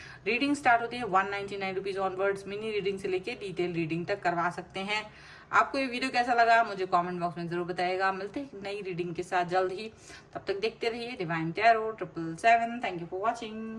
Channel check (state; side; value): identical; both; correlation 1.00